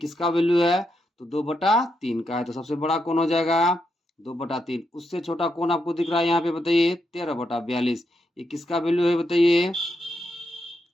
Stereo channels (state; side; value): normal; both; correlation 0.82